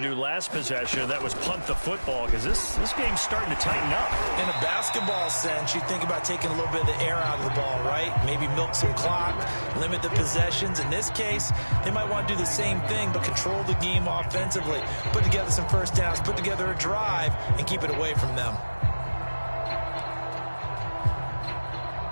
do last possession. That was punt the football because this game's starting to tighten up. In a basketball sense, you think about taking a little bit of the air out of the ball, right? Maybe milk some clock, limit the possessions. In this case, they might want to do the same thing but control the game offensively. Put together some first downs, put together a drive, and keep it away from them.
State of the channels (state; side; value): inverted; both; correlation -1.00